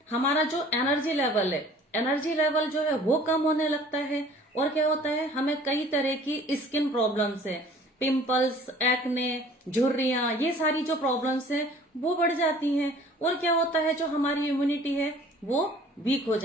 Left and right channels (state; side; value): normal; both; correlation 0.50